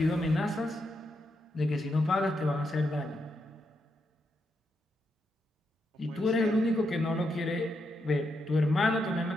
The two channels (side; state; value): both; normal; correlation 0.82